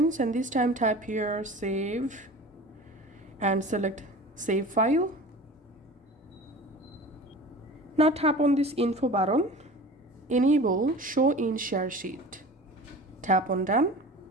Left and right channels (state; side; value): normal; both; correlation 0.38